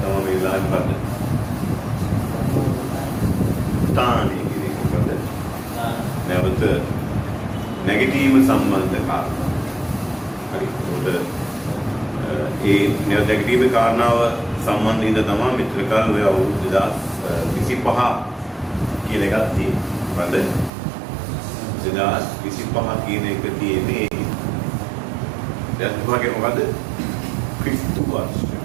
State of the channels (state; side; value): drops out; left; at 20.7 s